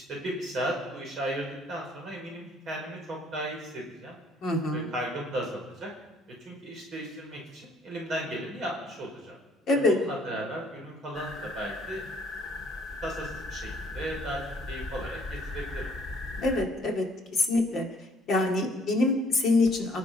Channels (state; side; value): normal; both; correlation 0.61